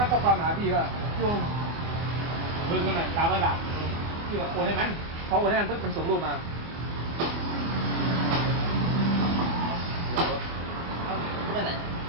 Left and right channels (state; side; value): late; left; 24 ms